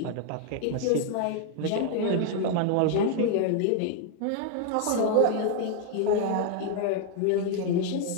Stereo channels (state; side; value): different; both; correlation 0.00